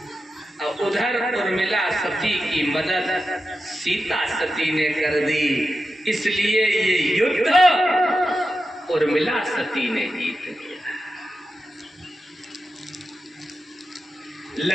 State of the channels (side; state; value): both; normal; correlation 0.90